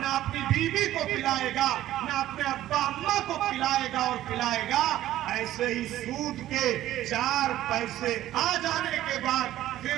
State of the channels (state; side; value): quieter; left; 13.8 dB